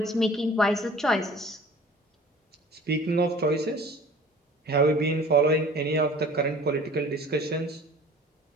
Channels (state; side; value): normal; both; correlation 0.47